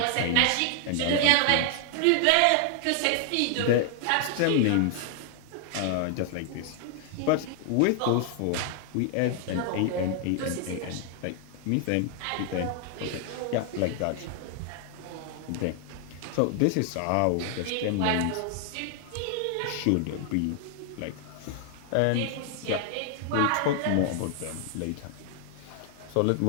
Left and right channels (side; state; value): both; different; correlation 0.00